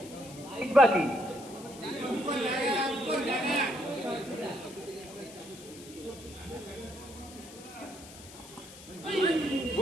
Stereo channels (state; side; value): noise; left; hiss, 17 dB below the sound